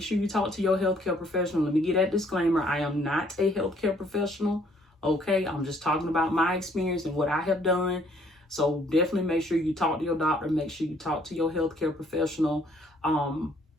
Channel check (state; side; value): normal; both; correlation 0.63